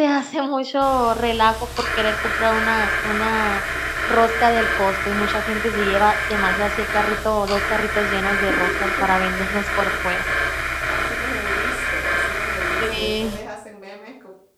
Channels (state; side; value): identical; both; correlation 1.00